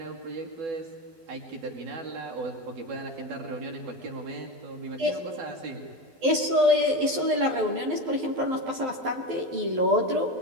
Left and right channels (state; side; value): late; left; 12 ms